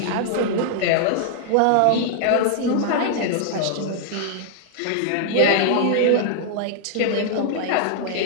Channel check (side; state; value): both; different; correlation -0.01